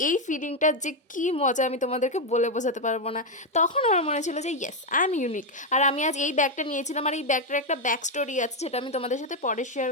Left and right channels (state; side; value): normal; both; correlation 0.04